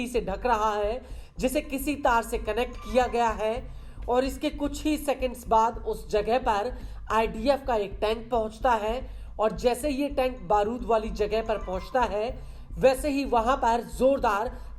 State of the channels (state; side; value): identical; both; correlation 1.00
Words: से ढक रहा है, जिसे किसी तार से कनेक्ट किया गया है। और इसके कुछ ही सेकंड्स बाद उस जगह पर आईडीएफ का एक टैंक पहुंचता है और जैसे ये टैंक बारूद वाली जगह पर पहुंचता है वैसे ही वहां पर जोरदार